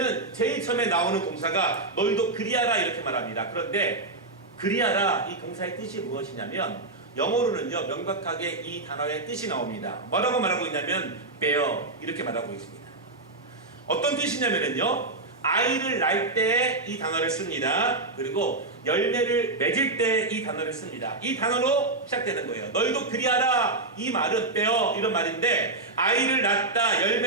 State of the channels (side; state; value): left; quieter; 3.1 dB